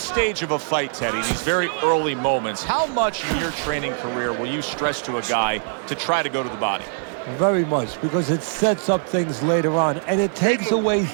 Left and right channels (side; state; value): left; silent; digital silence